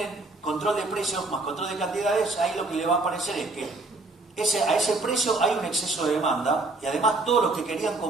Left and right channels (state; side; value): quieter; left; 3.1 dB